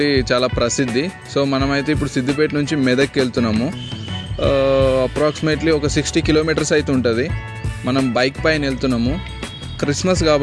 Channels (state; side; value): identical; both; correlation 1.00